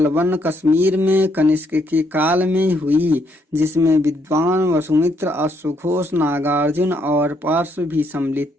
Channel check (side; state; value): both; normal; correlation 0.73